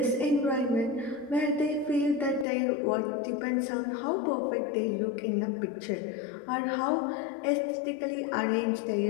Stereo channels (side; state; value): right; drops out; at 2.5 s